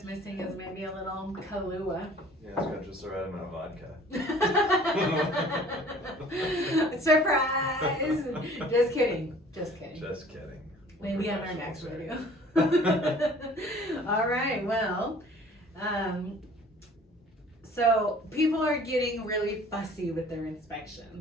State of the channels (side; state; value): both; normal; correlation 0.51